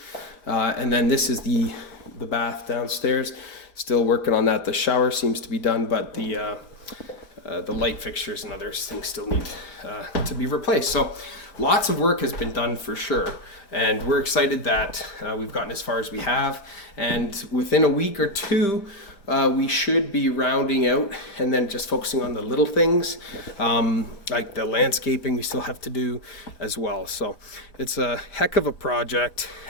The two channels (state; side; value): late; right; 5.1 ms